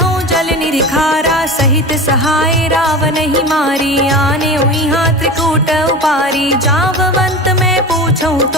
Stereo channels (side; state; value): both; normal; correlation 0.30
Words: जल निरिखारा सहित सहाय रावण ही मारी आने उइहा त्रिकूट उपारी जाववंत मैं पूछऊं